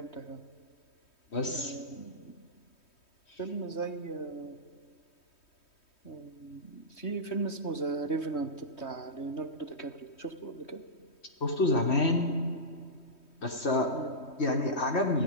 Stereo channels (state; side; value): late; right; 3.2 ms